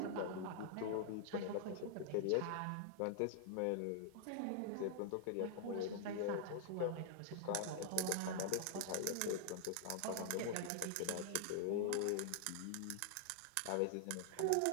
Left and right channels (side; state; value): both; different; correlation -0.01